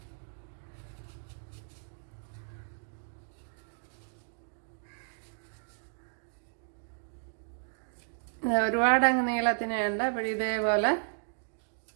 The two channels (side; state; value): left; silent; digital silence